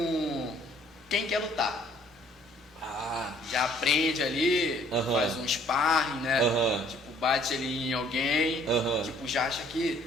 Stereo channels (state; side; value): normal; both; correlation 0.60